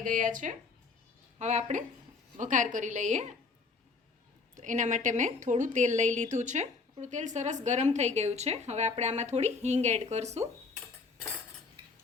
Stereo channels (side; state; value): right; quieter; 4.4 dB